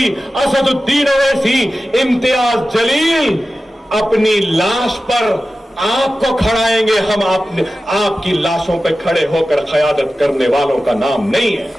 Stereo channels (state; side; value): normal; both; correlation 0.94